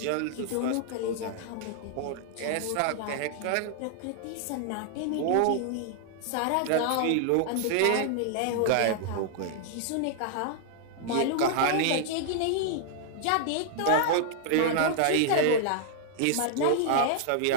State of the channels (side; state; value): both; different; correlation -0.01